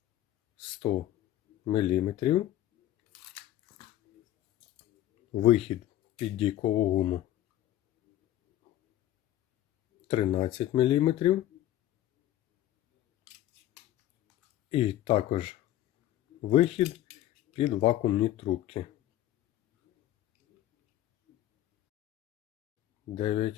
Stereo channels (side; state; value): right; quieter; 13.5 dB